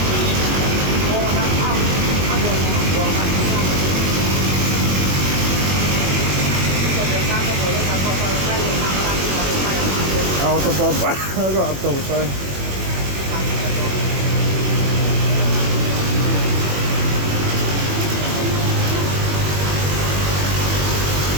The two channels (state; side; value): late; left; 21 ms